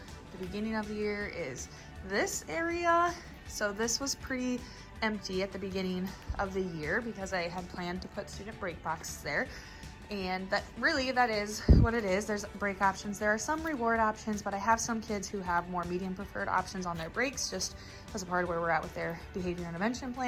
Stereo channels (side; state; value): both; identical; correlation 1.00